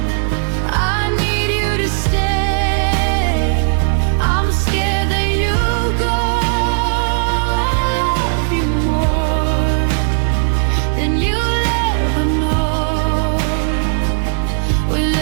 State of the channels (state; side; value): silent; left; 69 dB below the other